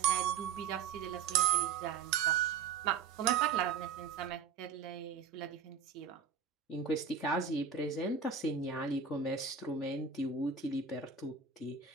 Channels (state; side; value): quieter; left; 6.5 dB